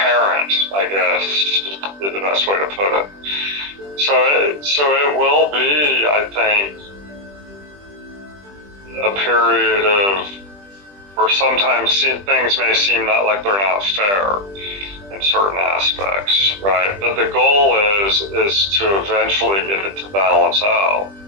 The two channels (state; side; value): late; left; 20 ms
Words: I guess, is the best way to put it. So it will be, I think, a period of where sometimes things may seem like they're not fair in certain aspects, right? But the goal is to eventually get it to balance out.